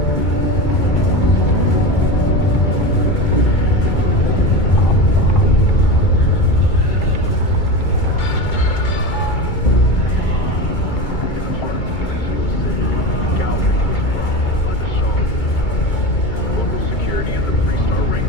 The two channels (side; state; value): right; late; 2.2 ms